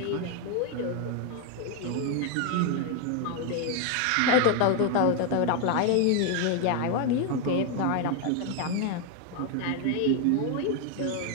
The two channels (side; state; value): both; different; correlation 0.01